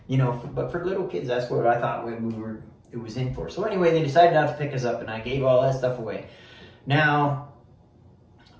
You know, but for little kids, that's what I thought it was in for. So anyway, they decided not to pick us up, and I gave all that stuff away. Now,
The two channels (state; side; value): identical; both; correlation 1.00